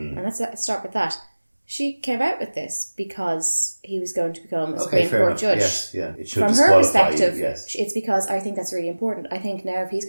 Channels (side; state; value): both; inverted; correlation -1.00